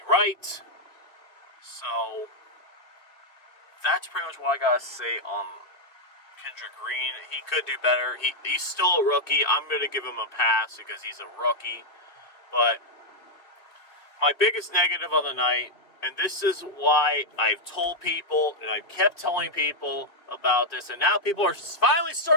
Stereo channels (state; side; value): late; right; 2.8 ms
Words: right. So that's pretty much what I gotta say on Kendrick Green. He could do better. He's still a rookie. I'm gonna give him a pass because he's a rookie. But my biggest negative of the night, and this is why I've told people, and I've kept telling people about this, and now people are finally